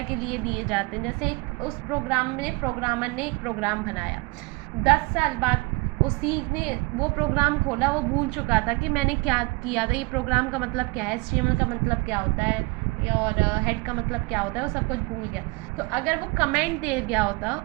के लिए दिए जाते हैं। जैसे उस प्रोग्राम में प्रोग्रामर ने एक प्रोग्राम बनाया, 10 साल बाद उसी ने वो प्रोग्राम खोला, वो भूल चुका था कि मैंने क्या किया था, ये प्रोग्राम का मतलब क्या है, HTML का मतलब क्या होता है और हेड का मतलब क्या होता है, वो सब कुछ भूल गया। तो अगर वो कमेंट दे गया होता,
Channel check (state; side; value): quieter; left; 26.4 dB